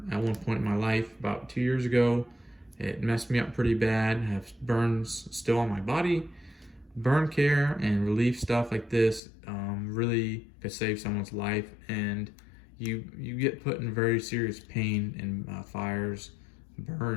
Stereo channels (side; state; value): right; drops out; at 9.2 s